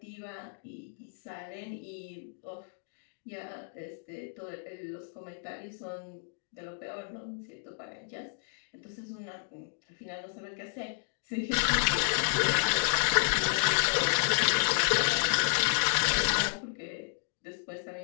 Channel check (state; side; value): silent; right; digital silence